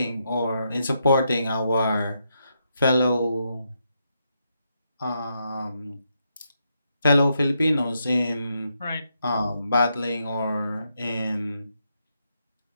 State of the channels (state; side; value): inverted; both; correlation -0.81